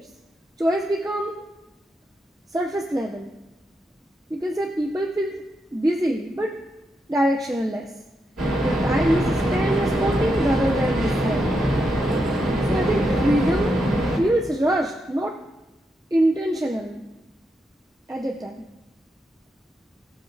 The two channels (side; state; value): both; normal; correlation 0.83